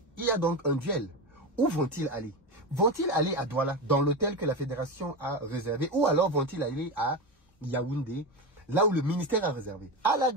il y a donc un duel. Où vont-ils aller? Vont-ils aller à Douala, dans l'hôtel que la fédération a réservé, ou alors vont-ils aller à Yaoundé, là où le ministère a réservé? À la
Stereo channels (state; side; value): normal; both; correlation 0.19